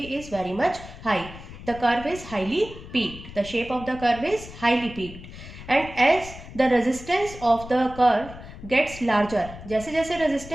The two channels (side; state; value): left; noise; rumble, 14 dB below the sound